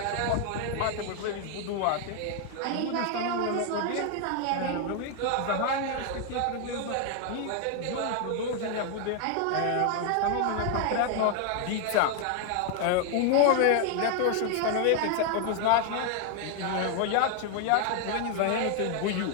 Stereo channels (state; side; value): different; both; correlation 0.00